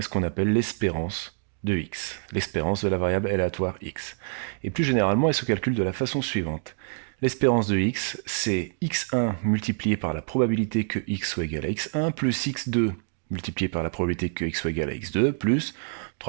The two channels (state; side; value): silent; left; digital silence